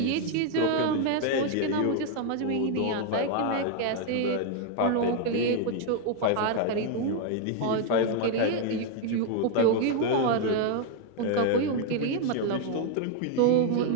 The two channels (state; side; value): different; both; correlation 0.00